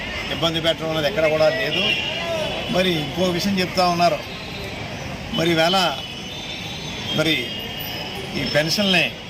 ఇబ్బంది పెట్టడం అనేది ఎక్కడ కూడా లేదు. మరి ఇంకో విషయం చెప్తా ఉన్నారు. మరి ఈవేళ మరి ఈ పెన్షన్ని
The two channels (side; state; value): both; identical; correlation 1.00